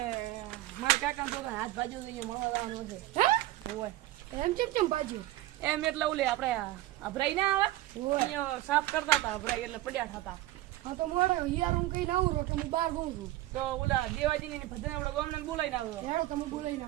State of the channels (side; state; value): left; quieter; 16.1 dB